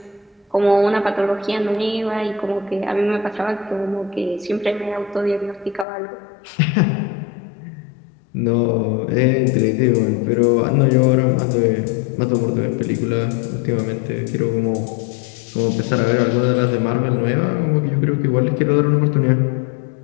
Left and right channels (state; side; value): drops out; right; at 5.9 s